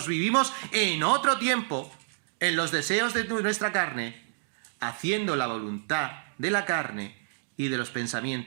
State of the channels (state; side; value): silent; left; digital silence